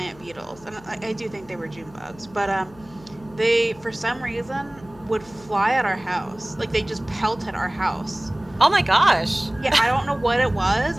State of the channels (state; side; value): noise; left; hum, 23 dB below the sound